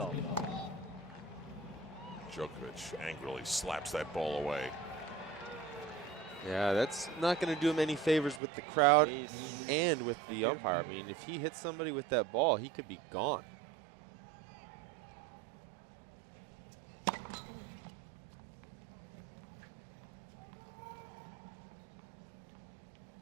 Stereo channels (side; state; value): left; drops out; at 8.4 s